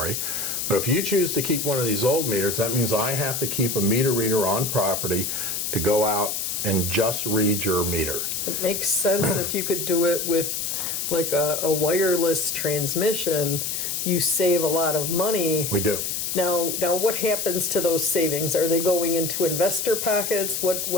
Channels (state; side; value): noise; left; hiss, 2 dB below the sound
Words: But if you choose to keep one of these old meters, that means I have to keep a meter reader on property to go out and just read your meter. It makes sense if you could do it with like a wireless transmission, you save a lot of money. We do. Now, what happens to those savings? Are they going into investor pockets?